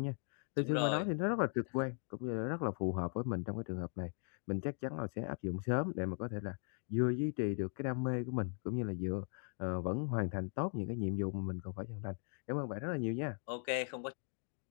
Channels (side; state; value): right; silent; 52 dB below the other